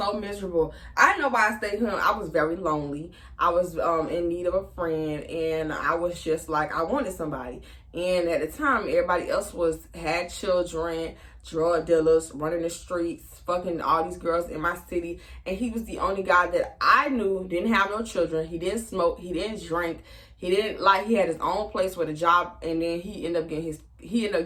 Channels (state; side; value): identical; both; correlation 1.00